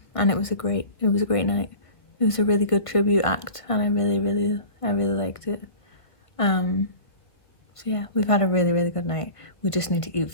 and it was a great night. It was a really good tribute act, and I really liked it. So yeah, we've had a really good night. We just need to eat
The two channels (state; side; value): late; right; 1.5 ms